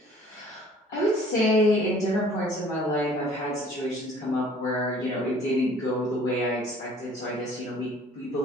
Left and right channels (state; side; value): normal; both; correlation 0.53